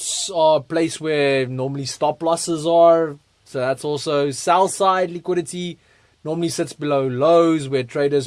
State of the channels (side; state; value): both; identical; correlation 1.00